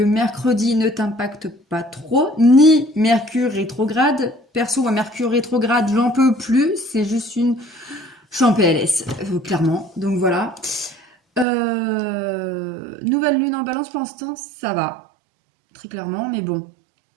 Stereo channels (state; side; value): drops out; left; at 11.5 s